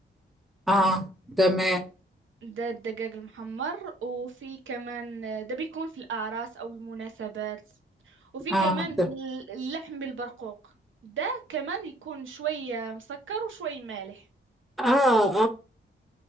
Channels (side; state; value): both; normal; correlation 0.62